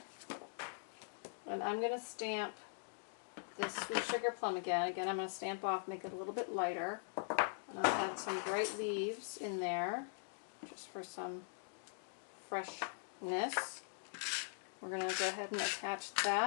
and I'm going to stamp this Sweet Sugar Plum again. Again, I'm going to stamp off, make it a little bit lighter. And I'll add some bright leaves in there, just for some freshness. We're going to go ahead and attach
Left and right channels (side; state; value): right; silent; digital silence